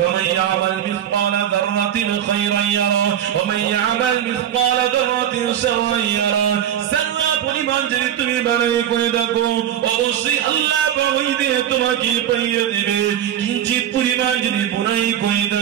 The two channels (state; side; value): quieter; left; 10.4 dB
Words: ইয়ামাল মিসকালা যাররাতিন খায়রান ইয়ারা ওয়া মান ইয়ামাল মিসকালা যাররাতিন শাররান ইয়ারা। সারা পরিমাণ যদি তুমি বাড়াই করে দেখো, অবশ্যই আল্লাহ পাক ওই দিনে তোমাকে পাইয়ে দিবে। কিঞ্চিত পরিমাণ যদি বুরাই করে